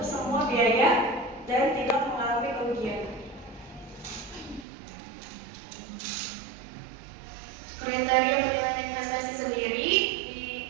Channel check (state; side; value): drops out; left; at 4.7 s